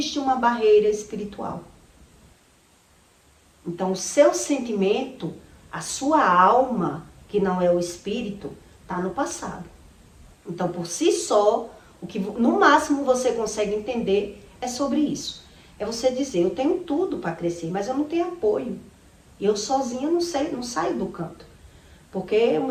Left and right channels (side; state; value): both; identical; correlation 1.00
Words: uma barreira espiritual. Então, o seu sentimento, a sua alma, que não é o espírito, está no passado. Então, por si só, o que no máximo você consegue entender é sobre isso. É você dizer, eu tenho tudo para crescer, mas eu não tenho apoio. E eu sozinha não saio do canto. Porque o